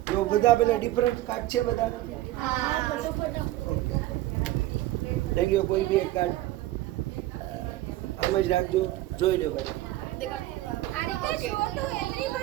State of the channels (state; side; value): quieter; left; 15.7 dB